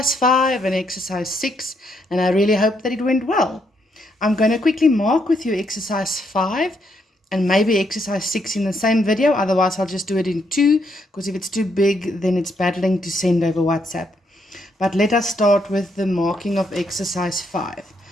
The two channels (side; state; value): both; normal; correlation 0.75